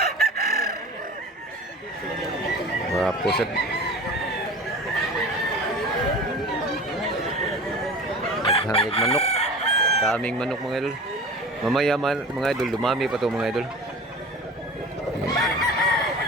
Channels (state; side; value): normal; both; correlation 0.37